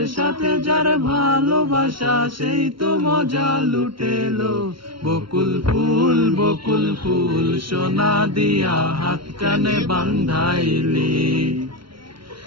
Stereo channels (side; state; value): left; late; 0.74 ms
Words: সাথে যার ভালোবাসা, সেই তো মজা লুটেলো। বকুল ফুল সোনা দিয়া হাত কানে বান্ধাইলি?